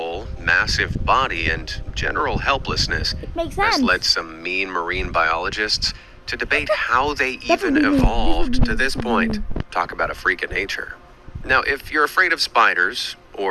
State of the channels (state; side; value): identical; both; correlation 1.00